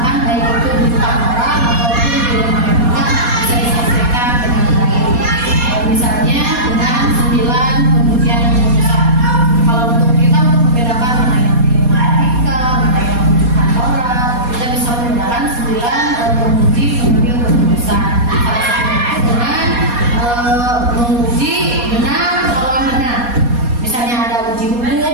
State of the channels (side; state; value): left; late; 4.2 ms